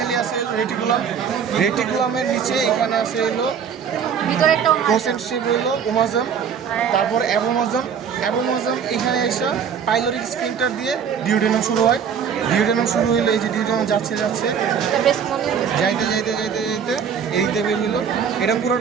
আছে রেটিকুলাম রেটিকুলামের নিচে এখানে আছে হলো ভিতরে একটা কনসেন্ট্রেটিভ হলো ওমাজম তারপর অ্যাবোমাজম অ্যাবোমাজম এখানে এসে পাইলোরিক স্ফিংক্টার দিয়ে ডিউডেনাম শুরু হয় ডিউডেনাম শুরু হইলো এই যে ডিউডেনাম যাচ্ছে যাইতে যাইতে যাইতে যাইতে এইতে বের হইলো এটা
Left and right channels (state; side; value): quieter; left; 7.3 dB